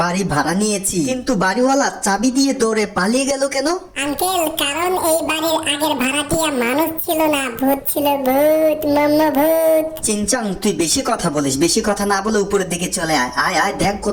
বাড়ি ভাড়া নিয়েছি, কিন্তু বাড়িওয়ালা চাবি দিয়ে দৌড়ে পালিয়ে গেল কেন? আঙ্কেল, কারণ এই বাড়ির আগের ভাড়াটিয়া মানুষ ছিল না, ভূত ছিল। ভূত, মাম্মা ভূত। চিংচাং, তুই বেশি কথা বলিস, বেশি কথা না বলে উপরের দিকে চলে আয়। আয় আয়, দেখ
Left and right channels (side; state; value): both; identical; correlation 1.00